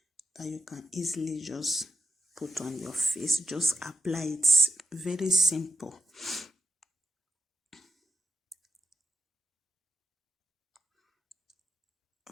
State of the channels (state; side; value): normal; both; correlation 0.86